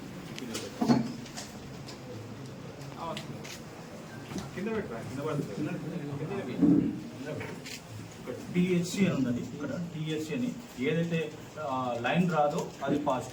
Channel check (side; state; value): both; identical; correlation 1.00